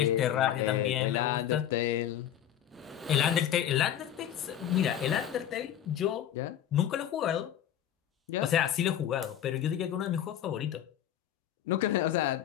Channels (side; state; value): right; quieter; 10.7 dB